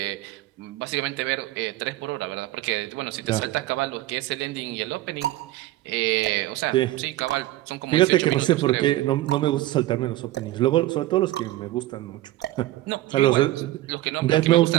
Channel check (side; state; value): left; quieter; 16.1 dB